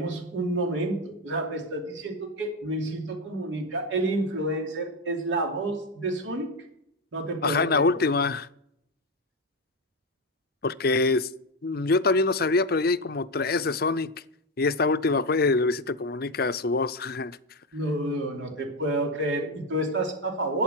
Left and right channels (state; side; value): normal; both; correlation 0.11